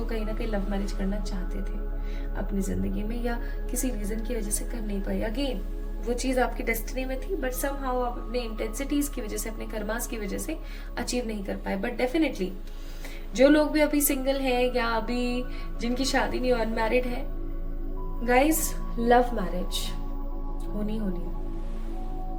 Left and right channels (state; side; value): identical; both; correlation 1.00